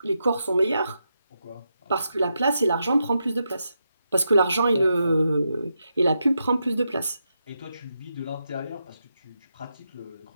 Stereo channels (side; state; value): both; inverted; correlation -0.85